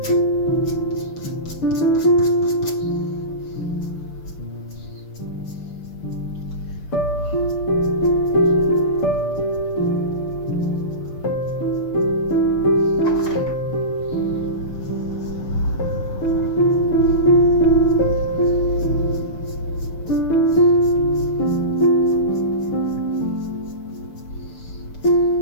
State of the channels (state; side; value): late; right; 6.8 ms